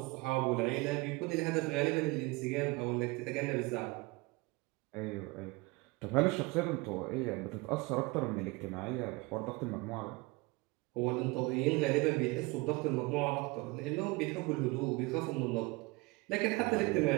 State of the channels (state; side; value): quieter; left; 24.6 dB